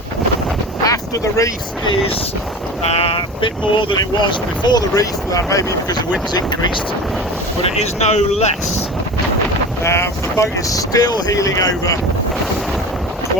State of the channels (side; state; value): both; normal; correlation 0.33